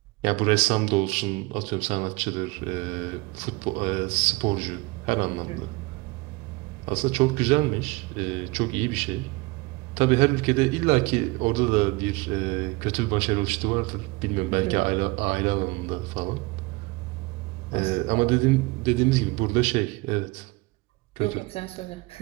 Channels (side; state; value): left; quieter; 23.8 dB